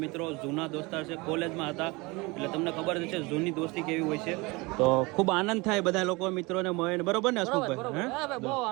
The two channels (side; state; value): left; quieter; 24.9 dB